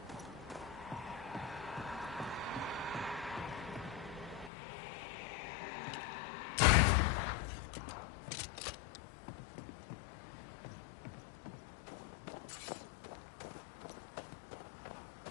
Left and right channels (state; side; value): drops out; right; at 4.5 s